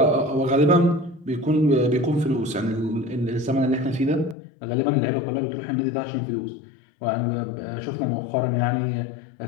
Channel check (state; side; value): drops out; right; at 4.4 s